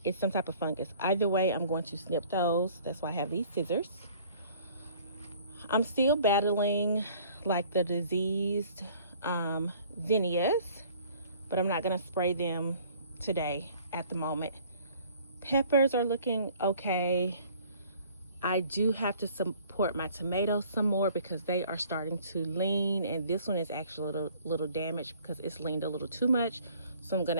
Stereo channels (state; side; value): inverted; both; correlation -0.54